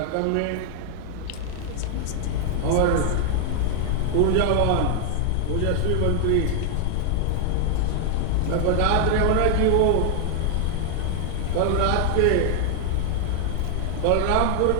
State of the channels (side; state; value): both; different; correlation 0.00